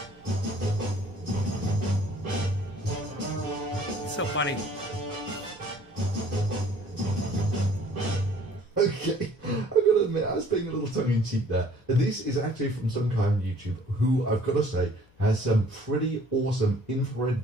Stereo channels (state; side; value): normal; both; correlation 0.56